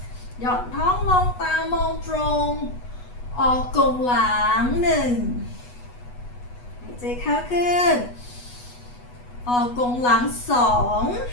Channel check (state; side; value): late; right; 8.2 ms